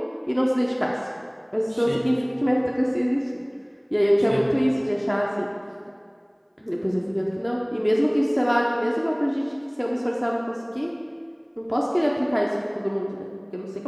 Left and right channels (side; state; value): both; identical; correlation 1.00